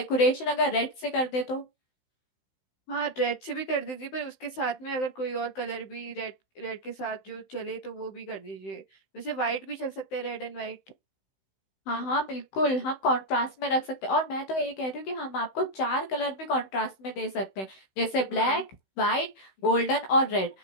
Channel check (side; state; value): right; late; 16 ms